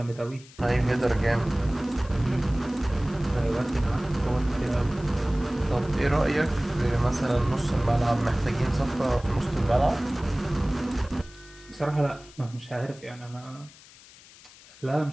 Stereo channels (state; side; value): noise; left; hiss, 22 dB below the sound